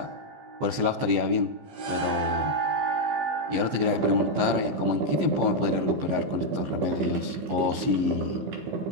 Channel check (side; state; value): left; late; 14 ms